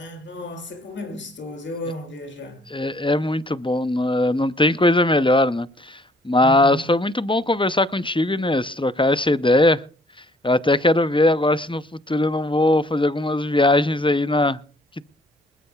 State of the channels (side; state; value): both; normal; correlation 0.61